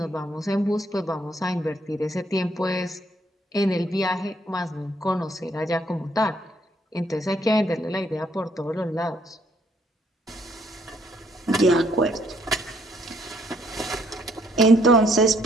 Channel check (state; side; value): normal; both; correlation 0.67